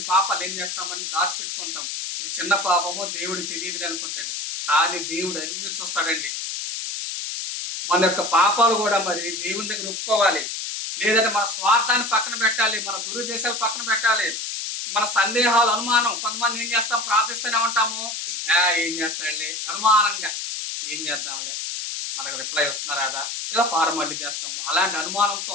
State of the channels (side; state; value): left; noise; hiss, 4 dB below the sound